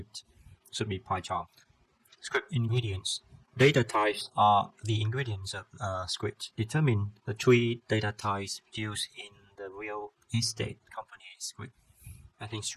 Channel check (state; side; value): identical; both; correlation 1.00